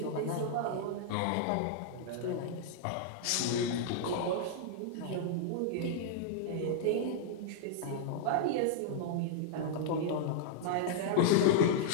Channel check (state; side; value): different; both; correlation -0.01